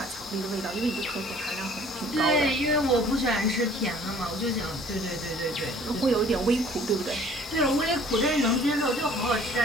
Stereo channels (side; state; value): both; normal; correlation 0.53